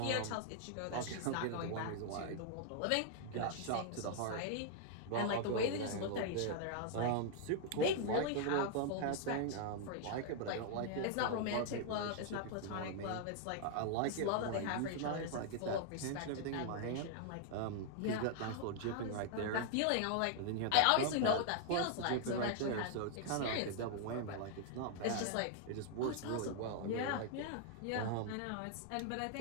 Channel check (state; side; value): different; both; correlation 0.00